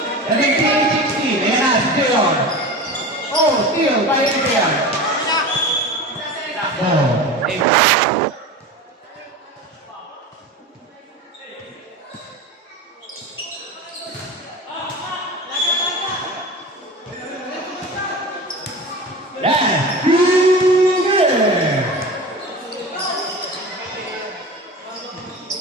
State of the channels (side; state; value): both; normal; correlation 0.32